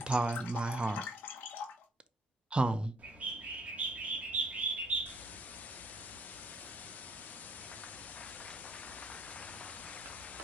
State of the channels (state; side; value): normal; both; correlation 0.66